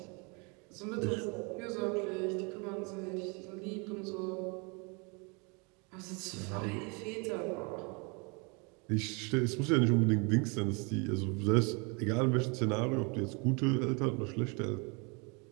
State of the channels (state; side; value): quieter; left; 31.9 dB